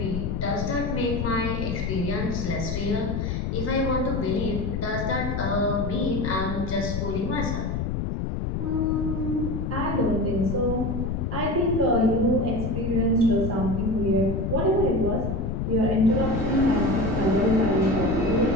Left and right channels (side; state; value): left; noise; rumble, 2 dB below the sound